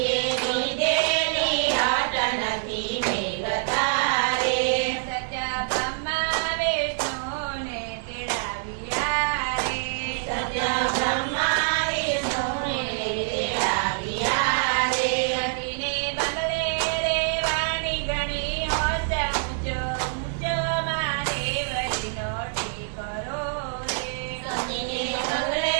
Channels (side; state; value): left; silent; digital silence